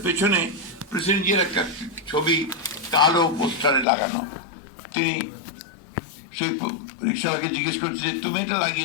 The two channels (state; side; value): drops out; right; at 3.9 s